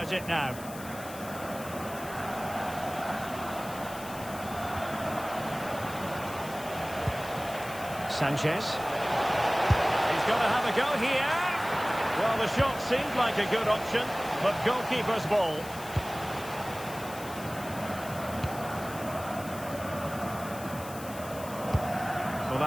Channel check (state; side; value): noise; left; hiss, 15 dB below the sound